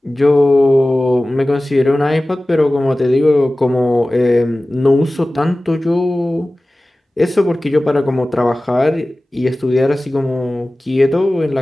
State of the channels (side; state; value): both; normal; correlation 0.97